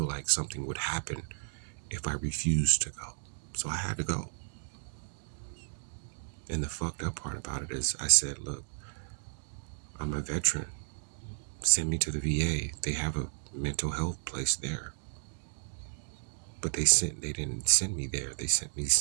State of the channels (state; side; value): silent; left; digital silence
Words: like something would happen if I refused to go. So I had to go. And the fucked up part about it is I said, look, I'm a veteran. Send me to the VA. They have a mental health place there. But they didn't send me there. They sent me